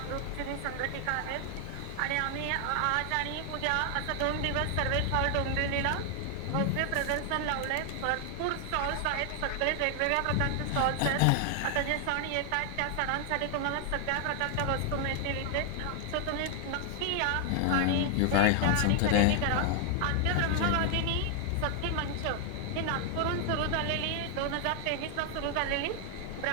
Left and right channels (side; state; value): both; different; correlation 0.00